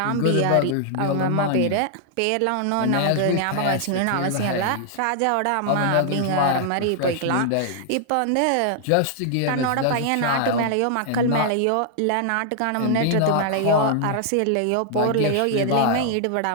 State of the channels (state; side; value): different; both; correlation -0.01